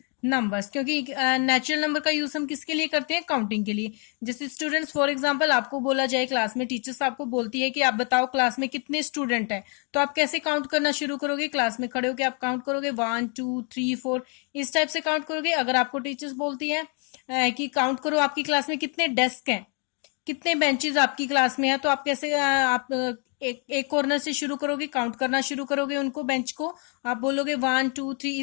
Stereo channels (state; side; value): quieter; right; 37.6 dB